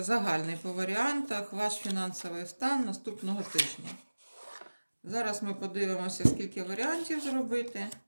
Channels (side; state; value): both; inverted; correlation -1.00